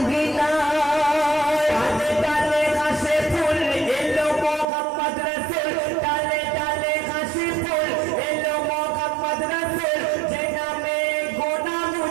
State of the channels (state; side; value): drops out; left; at 4.7 s